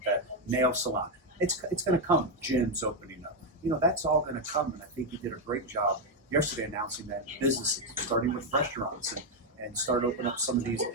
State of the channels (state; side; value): normal; both; correlation 0.03